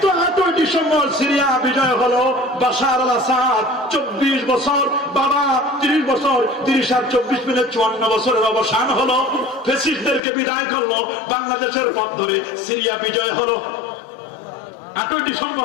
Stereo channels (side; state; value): right; drops out; at 10.2 s